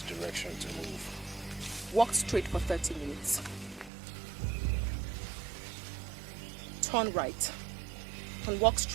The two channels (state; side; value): drops out; left; at 3.9 s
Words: direction to move? Walk straight for 30 minutes. Turn right and walk